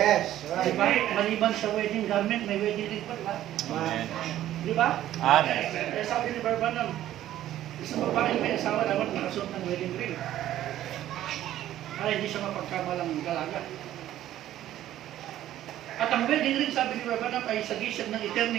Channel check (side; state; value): left; quieter; 12.9 dB